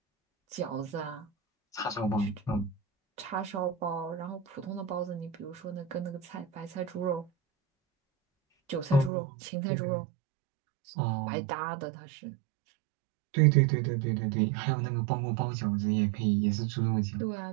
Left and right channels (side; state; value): left; drops out; at 9.1 s